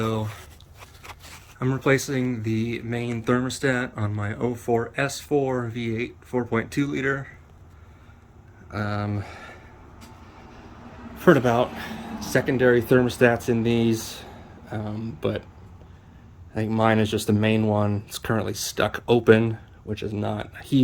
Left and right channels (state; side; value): identical; both; correlation 1.00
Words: I'm replacing the main thermostat on my 04 S4 V8 4.2 liter. Heard about secondary thermostats in these, but I think mine is just the main one. It's currently stuck open, which is not a